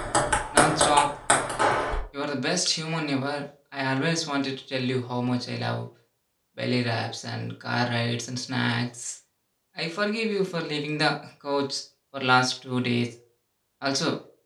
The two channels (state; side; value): identical; both; correlation 1.00